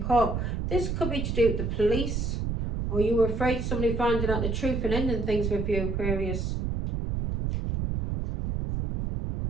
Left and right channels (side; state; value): right; noise; rumble, 1 dB below the sound